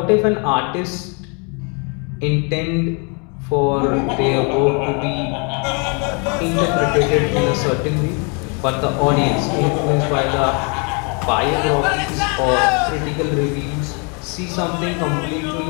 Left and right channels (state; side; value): quieter; right; 35.1 dB